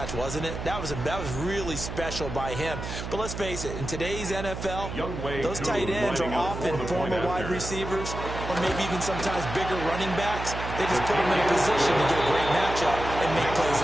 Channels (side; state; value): right; noise; hum, 7 dB below the sound